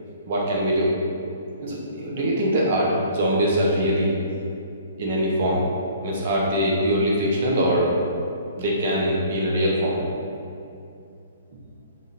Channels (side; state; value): both; inverted; correlation -0.53